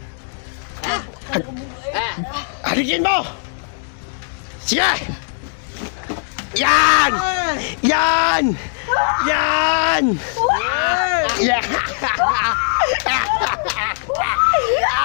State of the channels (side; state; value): right; silent; 66 dB below the other